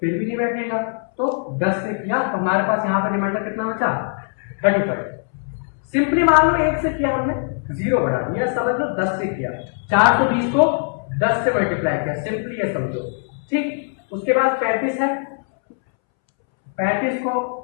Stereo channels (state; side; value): silent; right; 65 dB below the other